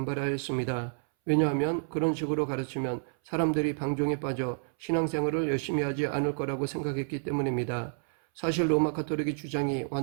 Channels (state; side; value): silent; left; 58 dB below the other